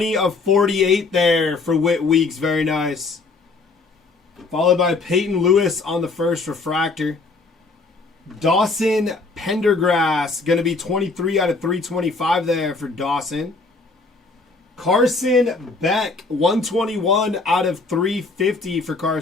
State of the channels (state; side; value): quieter; right; 3.8 dB